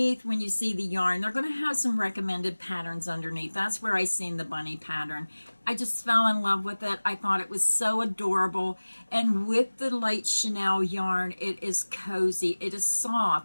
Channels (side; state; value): both; inverted; correlation -1.00